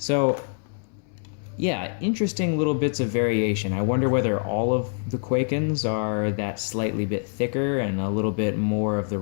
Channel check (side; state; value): right; silent; 62 dB below the other